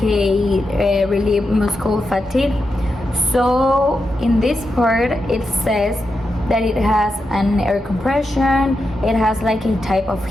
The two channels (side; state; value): both; normal; correlation 0.87